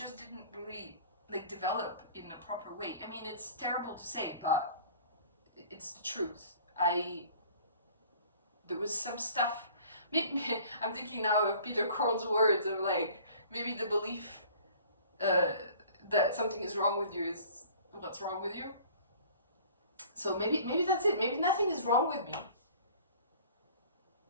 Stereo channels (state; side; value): inverted; both; correlation -0.49